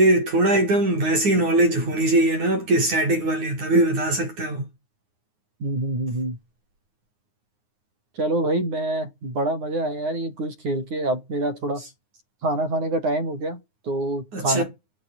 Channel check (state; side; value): late; left; 9.6 ms